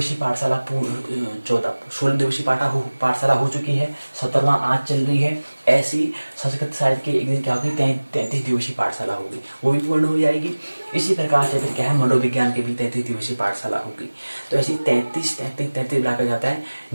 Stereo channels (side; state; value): both; inverted; correlation -1.00